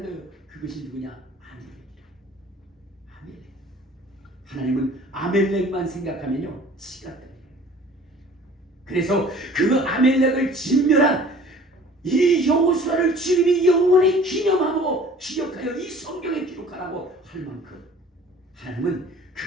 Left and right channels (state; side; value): normal; both; correlation 0.49